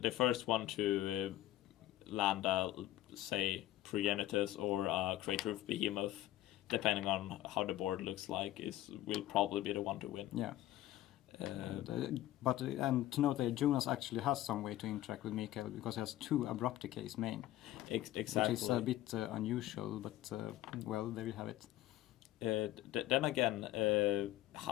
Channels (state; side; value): quieter; right; 14.7 dB